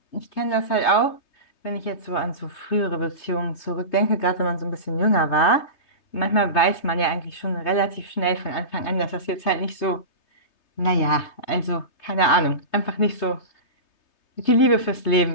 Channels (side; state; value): right; late; 3.3 ms